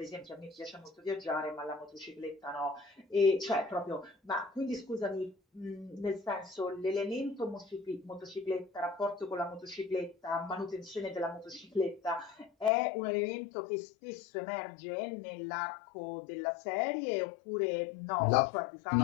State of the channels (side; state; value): right; drops out; at 12.7 s